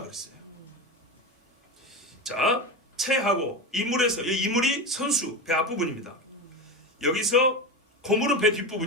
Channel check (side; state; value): both; normal; correlation 0.21